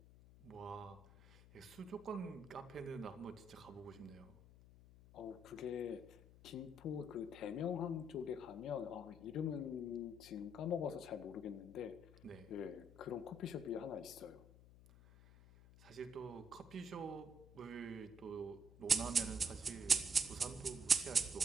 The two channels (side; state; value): left; noise; hum, 20 dB below the sound